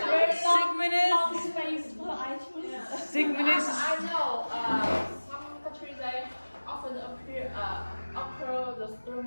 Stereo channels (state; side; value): inverted; both; correlation -1.00